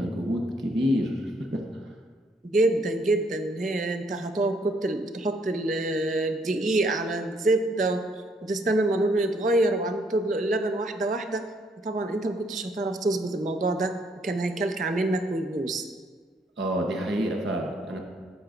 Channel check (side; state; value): both; normal; correlation 0.69